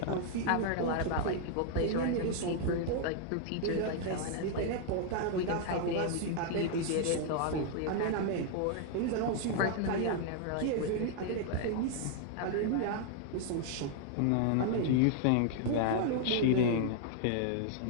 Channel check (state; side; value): different; both; correlation 0.00